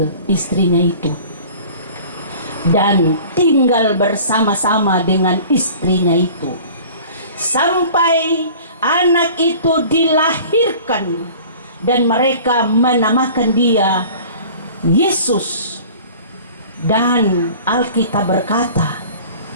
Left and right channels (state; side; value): inverted; both; correlation -0.45